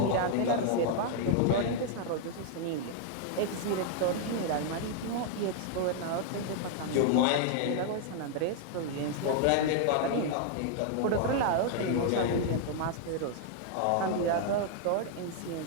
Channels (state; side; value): different; both; correlation 0.00